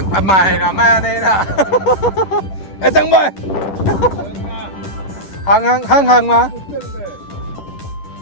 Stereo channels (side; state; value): right; late; 10 ms